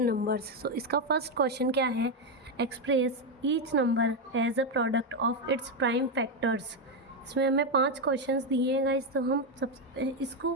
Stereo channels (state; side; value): normal; both; correlation 0.06